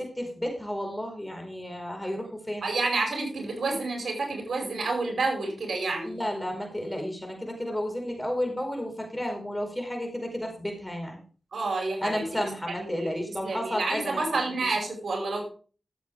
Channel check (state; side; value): normal; both; correlation 0.93